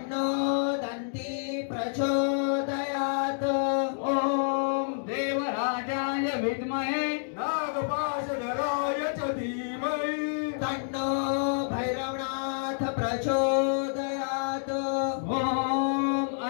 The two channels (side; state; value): right; silent; digital silence